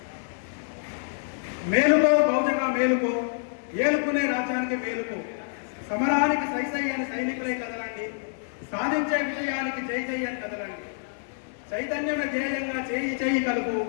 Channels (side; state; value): right; silent; 56 dB below the other